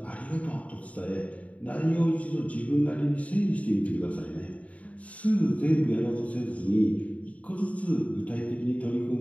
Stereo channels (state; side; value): late; right; 0.068 ms